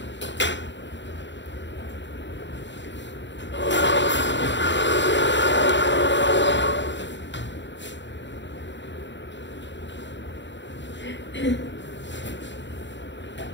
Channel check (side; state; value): right; late; 0.53 ms